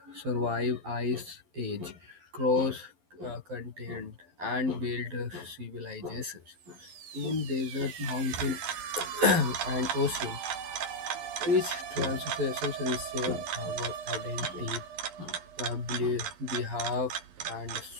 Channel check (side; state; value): left; late; 11 ms